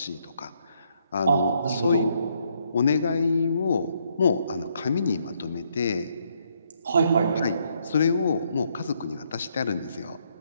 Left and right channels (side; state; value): both; inverted; correlation -0.73